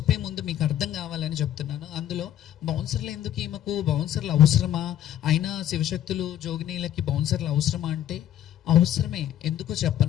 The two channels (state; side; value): quieter; right; 11.4 dB